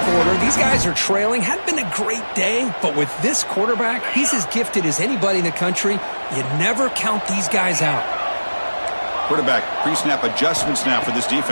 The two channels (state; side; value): inverted; both; correlation -1.00